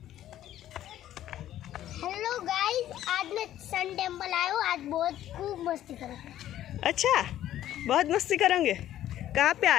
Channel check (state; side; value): quieter; right; 12.5 dB